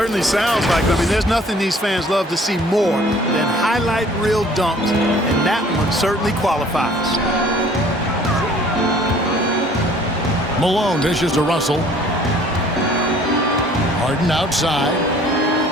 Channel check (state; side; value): normal; both; correlation 0.54